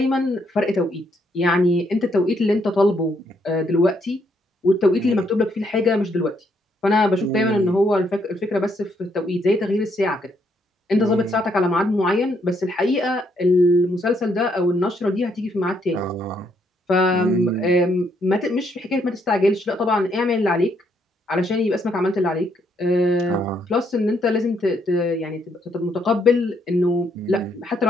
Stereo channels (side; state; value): both; normal; correlation 0.73